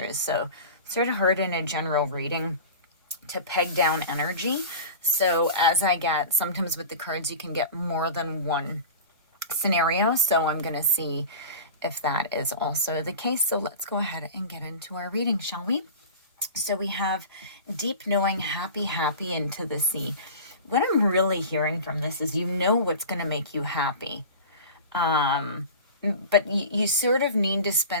So sort of hard in a general reading to peg down energy. So as I get, sometimes with the cards, you can get more than one scenario, so I'm going to see if that is also the case. So let's go ahead and get into our reading, shall we? So we have deep knowing, happy into the sea. What I'm really hearing from this is you know what's going to make you happy, but you sort of need to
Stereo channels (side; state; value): both; inverted; correlation -0.34